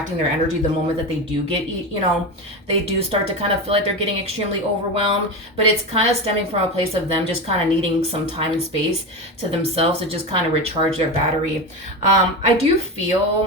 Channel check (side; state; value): both; normal; correlation 0.20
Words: their energy the moment that they do get, they do start to kind of feel like they're getting extremely overwhelmed, but it's kind of stemming from a place of them just kind of needing some time and space to themselves to just kind of recharge their battery. I do